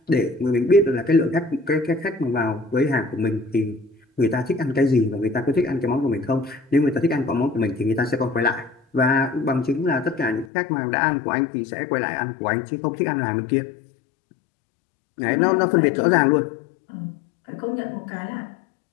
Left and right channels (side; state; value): right; drops out; at 10.5 s